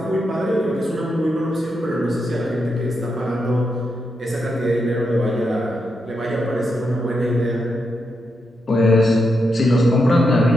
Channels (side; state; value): both; normal; correlation 0.84